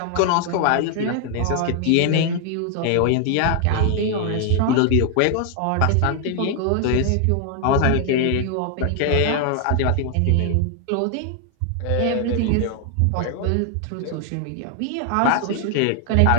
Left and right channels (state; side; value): different; both; correlation 0.00